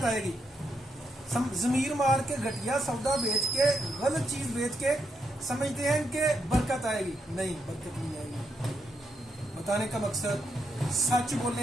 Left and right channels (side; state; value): both; normal; correlation 0.81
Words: آئے گی. ضمیر مار کے گھٹیا سودا بیچ کے، غلط چیز بیچ کے سمجھتے ہیں کہ برکت آئے گی. نہیں، برکت نہیں آئے گی. بتانے کا مقصد سچ